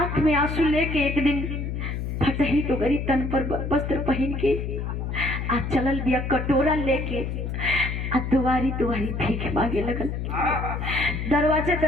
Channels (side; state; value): left; noise; hum, 4 dB below the sound